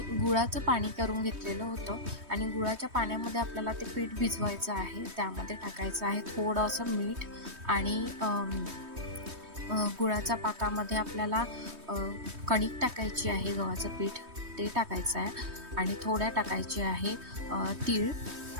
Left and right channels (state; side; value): late; left; 3.2 ms